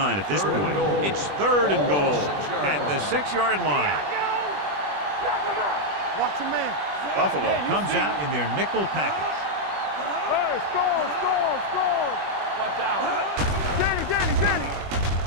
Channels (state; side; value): late; left; 20 ms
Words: at this point. It's third and goal at the 6-yard line. Knock him out. Watch him in. Buffalo comes out in their nickel package. Hey, score. Watch out. Danny.